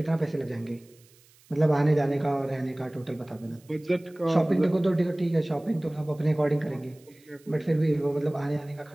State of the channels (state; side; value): noise; right; hiss, 29 dB below the sound